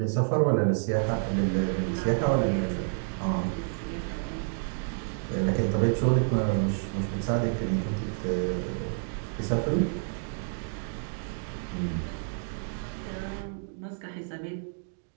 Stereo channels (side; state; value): left; silent; 58 dB below the other